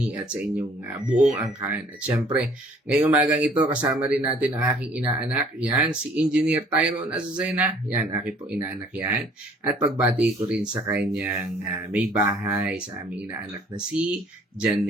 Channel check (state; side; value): normal; both; correlation 0.56